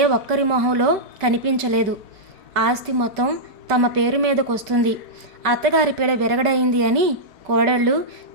ఒక్కరి మొహంలో కనిపించలేదు. ఆస్తి మొత్తం తమ పేరు మీదకొస్తుంది, అత్తగారి పీడ విరగడైంది అని కోడళ్ళు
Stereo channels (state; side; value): late; left; 4.7 ms